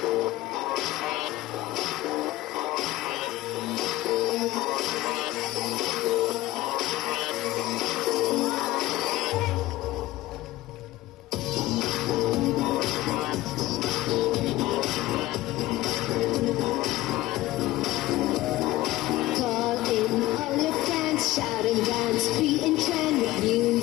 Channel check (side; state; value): right; quieter; 17.3 dB